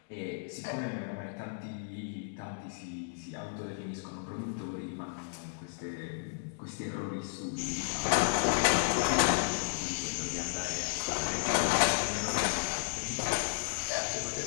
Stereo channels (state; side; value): silent; right; digital silence